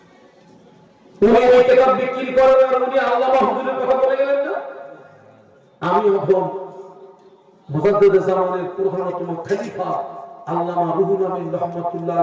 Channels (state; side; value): identical; both; correlation 1.00